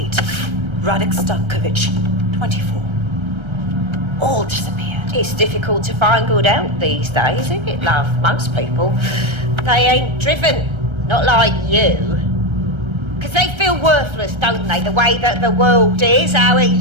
Radek Stankovic, 24. All disappeared. It's difficult to find good help these days, isn't it, love? Most people, they ain't driven. Not like you. Because they feel worthless, don't they? The way that the world is, how it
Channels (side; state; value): left; late; 1.3 ms